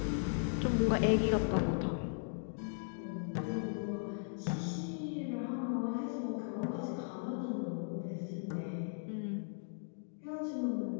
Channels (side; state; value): right; silent; digital silence